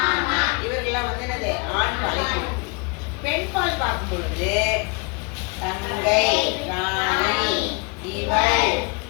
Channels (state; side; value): quieter; right; 31.7 dB